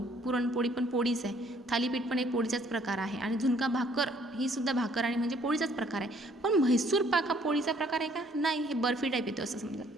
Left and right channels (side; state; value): both; normal; correlation 0.62